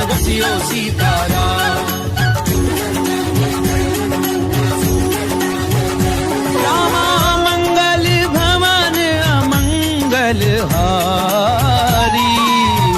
बसियो सीताराम। रामा मंगल भवन अमंगल हारी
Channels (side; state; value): both; identical; correlation 1.00